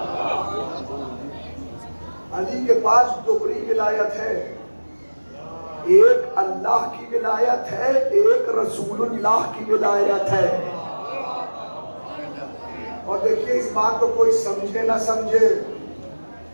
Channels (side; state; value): both; inverted; correlation -1.00